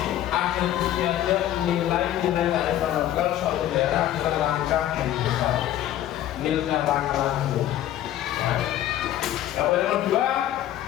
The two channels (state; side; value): quieter; right; 12.5 dB